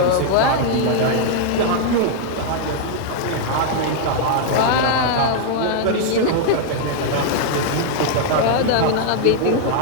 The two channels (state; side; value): different; both; correlation -0.01